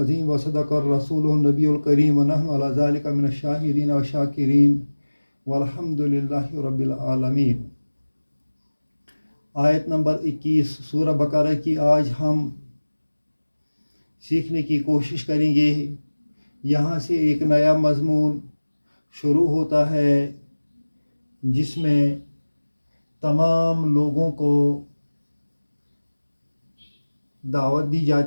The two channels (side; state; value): both; inverted; correlation -1.00